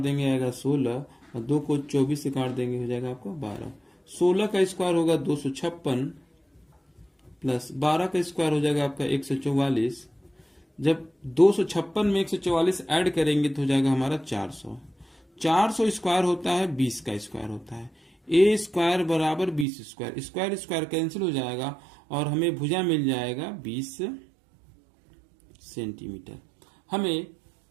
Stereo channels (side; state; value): left; drops out; at 19.7 s